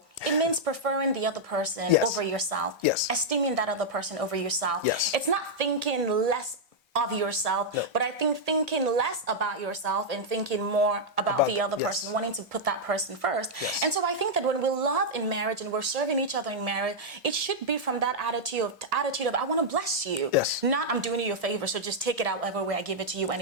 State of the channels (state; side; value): normal; both; correlation -0.04